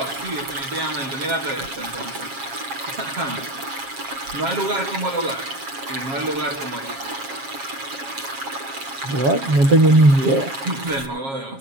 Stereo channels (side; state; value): left; late; 7.4 ms